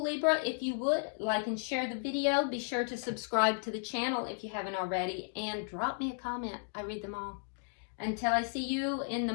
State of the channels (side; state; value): right; silent; 55 dB below the other